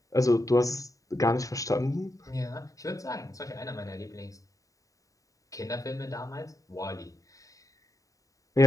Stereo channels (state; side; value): late; right; 0.16 ms